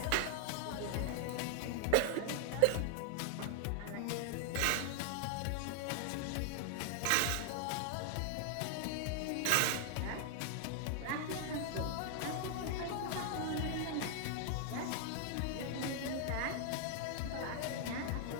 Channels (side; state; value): both; different; correlation 0.00